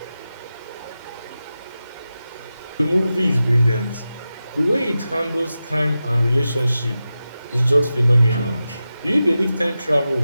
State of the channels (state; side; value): inverted; both; correlation -0.93